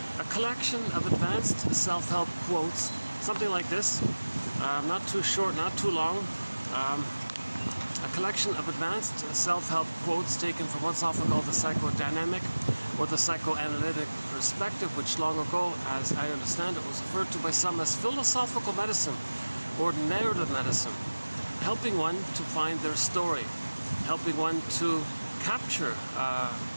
A collection of advanced self-help quotes, something like this, not too short, not too long. A collection of advanced self-help quotes taken from what's often called the psychodynamic or the psychoanalytic perspective, which long ago, as I understand it, was referred to by some as philosophical medicine or narrative medicine, helping one to find their story, helping one to capture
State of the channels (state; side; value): inverted; both; correlation -1.00